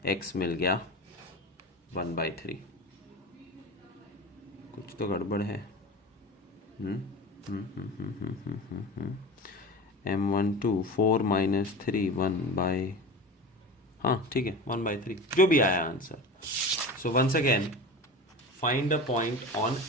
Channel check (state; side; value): normal; both; correlation 0.31